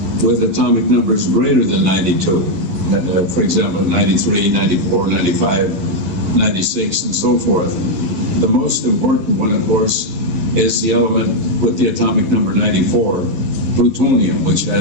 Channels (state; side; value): late; left; 11 ms